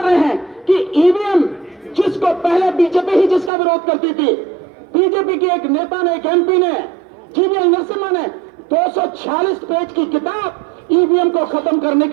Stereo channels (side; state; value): left; drops out; at 3.5 s